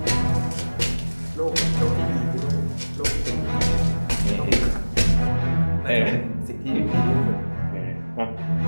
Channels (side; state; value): both; inverted; correlation -1.00